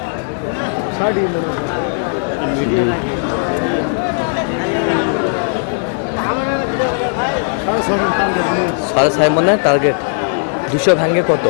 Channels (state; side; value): silent; right; digital silence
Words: সাড়ে 6 মনে টার্গেট। 200 ভাঙে কত?